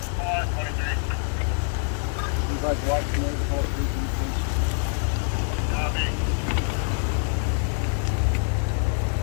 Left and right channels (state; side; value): silent; right; 55 dB below the other